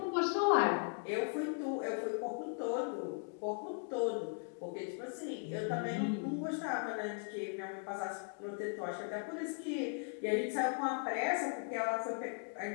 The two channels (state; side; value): quieter; right; 39.9 dB